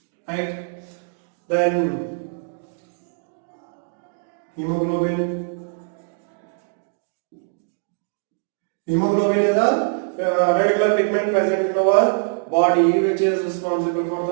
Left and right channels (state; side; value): silent; left; digital silence